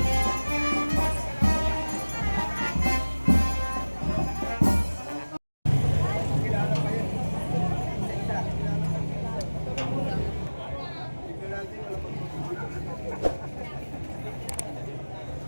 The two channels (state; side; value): inverted; both; correlation -1.00